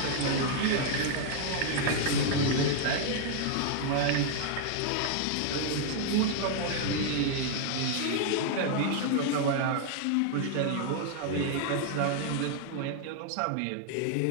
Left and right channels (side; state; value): both; different; correlation 0.00